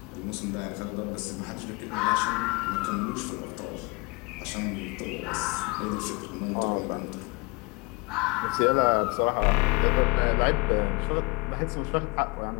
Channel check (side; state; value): right; quieter; 28.3 dB